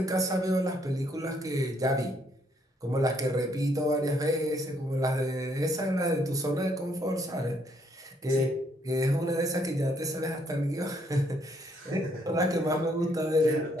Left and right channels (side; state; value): both; normal; correlation 0.70